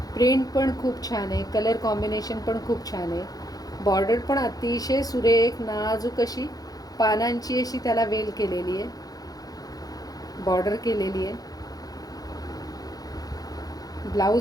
प्रिंट पण खूप छान आहे, कलर कॉम्बिनेशन पण खूप छान आहे. बॉर्डर पण अतिशय सुरेख नाजूक अशी पानांची अशी त्याला वेल केलेली आहे, बॉर्डर केलेली आहे.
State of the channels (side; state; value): right; late; 0.18 ms